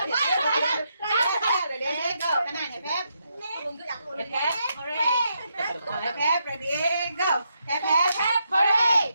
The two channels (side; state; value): both; inverted; correlation -0.80